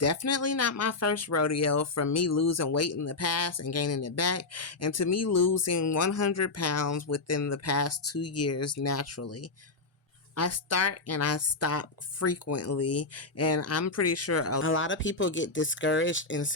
not my first rodeo, from me losing weight in the past and gaining it back, and to me losing 100 pounds within the past 2 years naturally. I start and I stop frequently, and I'm pretty sure a lot of people get discouraged and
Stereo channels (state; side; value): quieter; right; 3.6 dB